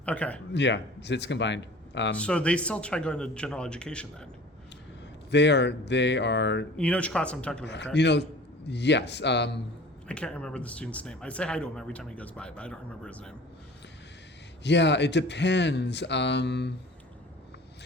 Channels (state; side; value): normal; both; correlation 0.43